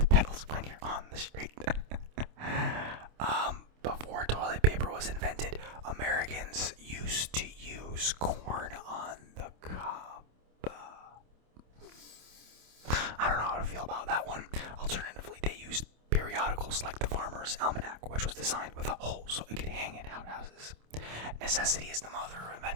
pedals when you're on the street. Before toilet paper was invented, Americans used to use corn on the cob. I don't know how to feel about that one. Alternatively, they used periodicals like the Farmer's Almanac, which was designed with a hole so it could hang in outhouses. Necessity is the mother of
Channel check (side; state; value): left; late; 27 ms